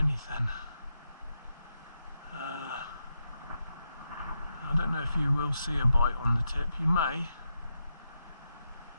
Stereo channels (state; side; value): inverted; both; correlation -0.85